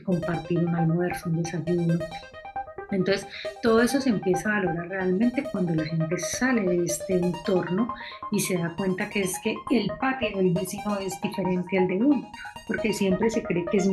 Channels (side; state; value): both; identical; correlation 1.00